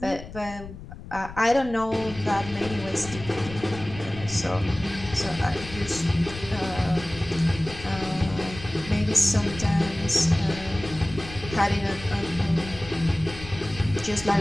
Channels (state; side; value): noise; left; rumble, 13 dB below the sound